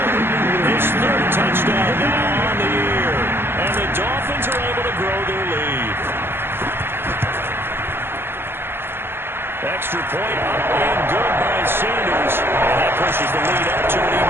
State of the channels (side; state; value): left; late; 0.11 ms